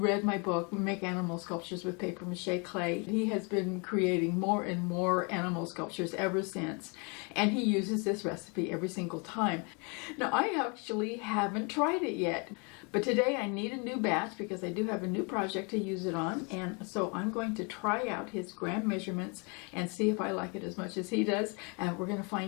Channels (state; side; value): quieter; right; 33.1 dB